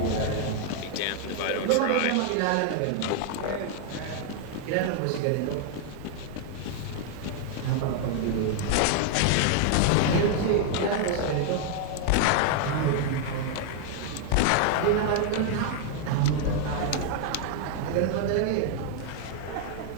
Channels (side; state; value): both; different; correlation 0.00